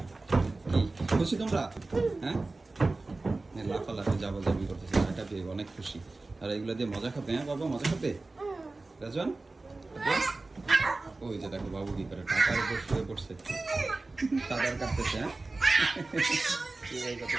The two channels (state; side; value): quieter; left; 3.3 dB